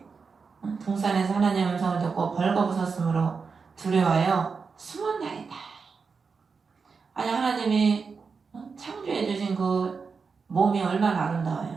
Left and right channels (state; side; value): quieter; left; 5.1 dB